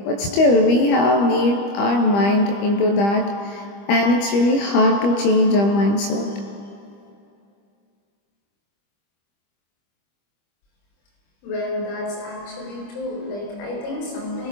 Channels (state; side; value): late; right; 25 ms